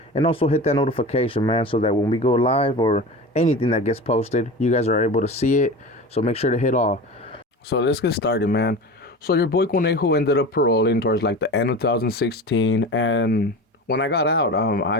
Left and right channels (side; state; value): both; normal; correlation 0.31